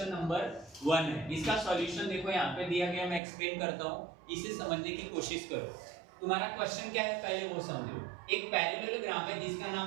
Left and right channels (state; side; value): drops out; left; at 3.2 s